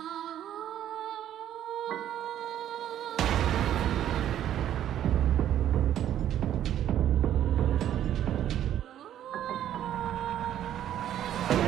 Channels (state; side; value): quieter; left; 11.2 dB